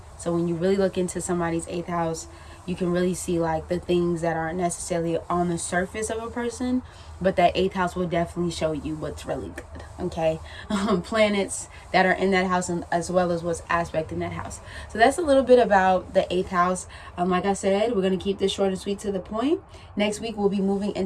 So when you really look into somebody's 8th house, you can really see like the things that aren't necessarily on the surface of a person, but that 8th house will definitely show you what's really good. Okay. Planets that are in that house, and as well as what's aspect in that house. So that's a little bit about the 8th house. Like I said, we're going to keep this short and sweet to the point. Next week, we'll be moving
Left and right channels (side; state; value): both; identical; correlation 1.00